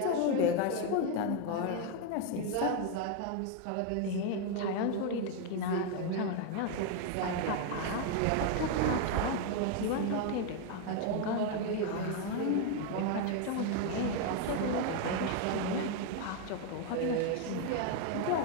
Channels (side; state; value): both; different; correlation 0.01